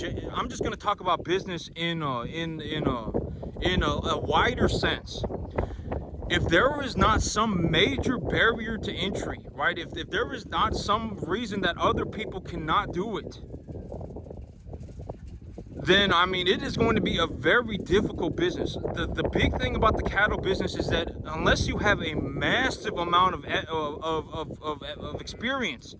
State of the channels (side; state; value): both; identical; correlation 1.00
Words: just going to talk about business in a wider sense. If there is not some major barrier to entry, right? If there is not some reason that other people cannot do it, then I mean it is going to be a very difficult business. The big thing about the cattle business is that unless you have a massive amount of experience,